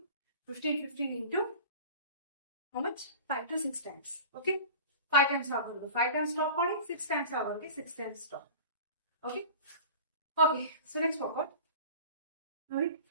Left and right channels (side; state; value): both; inverted; correlation -0.38